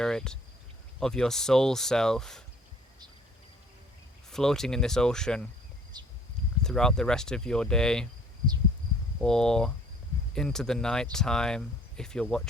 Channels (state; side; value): normal; both; correlation 0.56